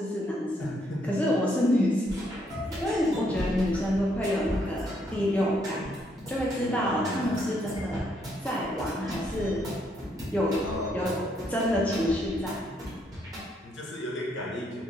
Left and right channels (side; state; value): both; normal; correlation 0.73